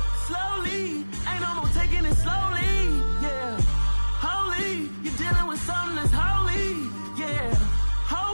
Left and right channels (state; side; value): inverted; both; correlation -1.00